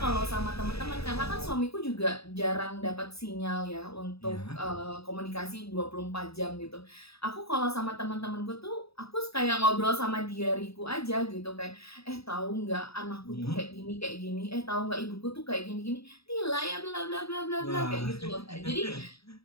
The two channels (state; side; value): late; right; 0.77 ms